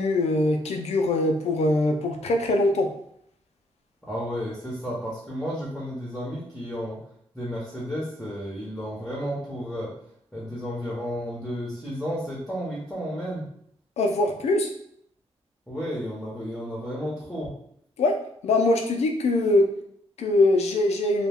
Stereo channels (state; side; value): normal; both; correlation 0.67